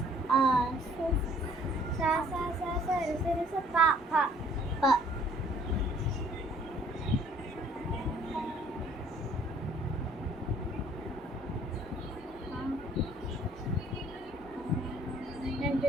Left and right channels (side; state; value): both; normal; correlation 0.58